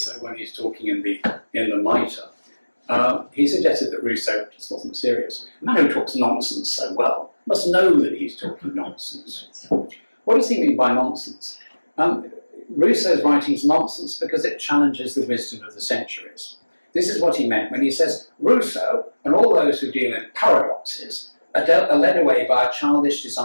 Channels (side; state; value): both; inverted; correlation -1.00